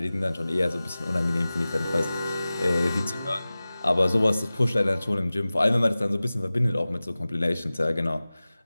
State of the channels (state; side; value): inverted; both; correlation -0.97